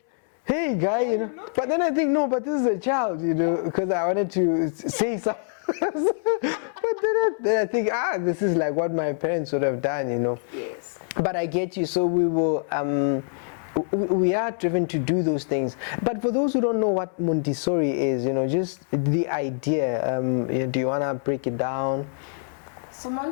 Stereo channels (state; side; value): silent; right; 62 dB below the other